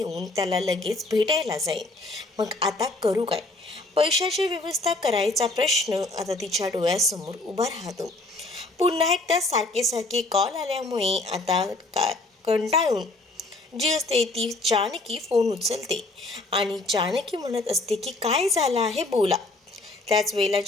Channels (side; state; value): right; quieter; 3.0 dB